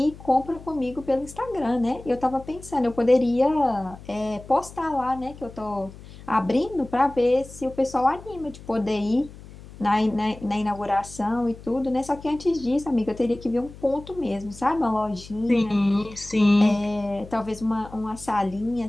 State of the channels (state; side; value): noise; left; hum, 17 dB below the sound